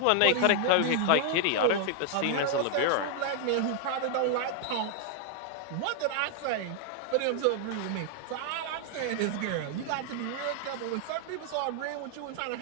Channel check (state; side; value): different; both; correlation 0.00